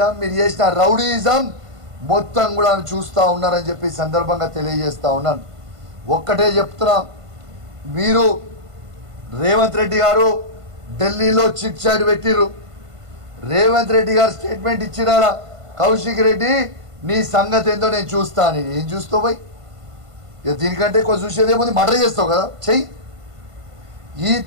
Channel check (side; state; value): left; late; 1.5 ms